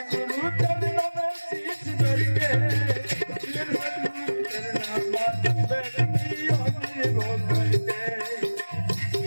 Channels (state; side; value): inverted; both; correlation -1.00